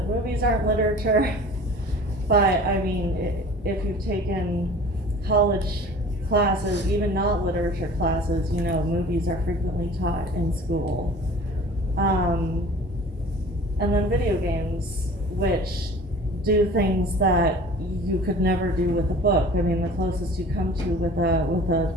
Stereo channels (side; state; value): both; normal; correlation 0.44